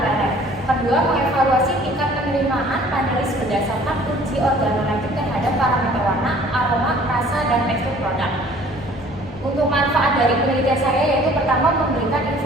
Kedua, mengevaluasi tingkat penerimaan panelis berdasarkan uji organoleptik terhadap parameter warna, aroma, rasa, dan tekstur produk. Untuk manfaat dari penelitian saya yaitu pertama memberikan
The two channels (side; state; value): both; normal; correlation 0.53